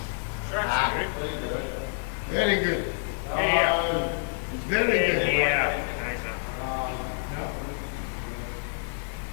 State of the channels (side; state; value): right; silent; 59 dB below the other